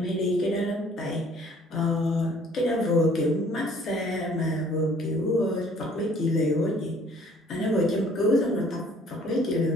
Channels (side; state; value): both; normal; correlation 0.57